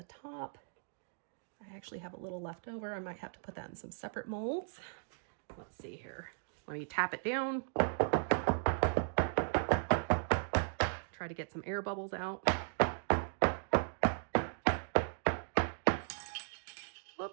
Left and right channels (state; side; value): silent; left; digital silence